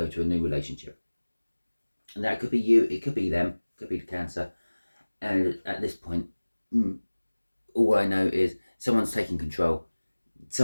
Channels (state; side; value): inverted; both; correlation -1.00